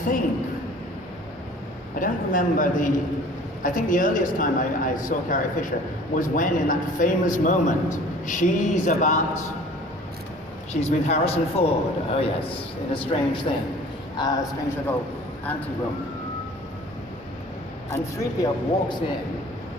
don't remember I think the earliest time I saw Carrie Fisher was when, in that famous moment, she's with Harrison Ford, oh yes, in a strange thing, a strange little ante-room. And 3PO walks in,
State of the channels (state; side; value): normal; both; correlation 0.48